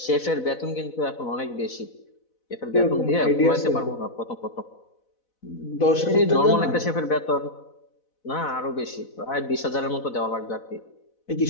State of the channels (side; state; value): right; late; 4.0 ms